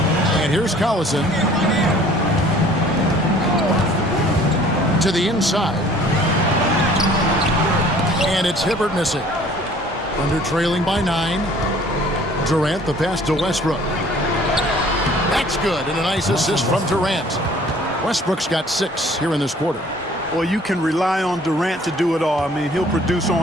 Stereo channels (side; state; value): both; normal; correlation 0.53